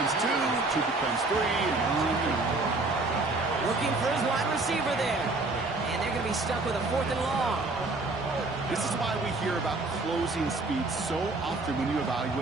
2, 2 becomes 3, and on and on. Looking for his wide receiver there. And they're going to be stuck with a 4th and long. This is why we hear about closing speed so often when you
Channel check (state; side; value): quieter; left; 3.3 dB